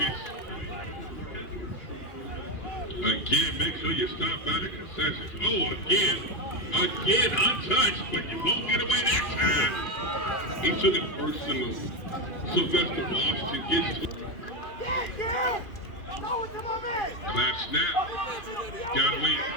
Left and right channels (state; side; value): late; right; 2.8 ms